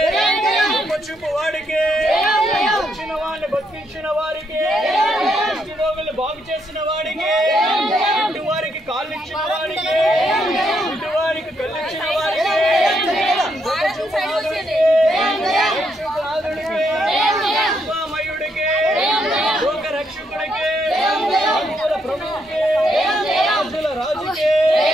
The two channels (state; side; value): normal; both; correlation 0.77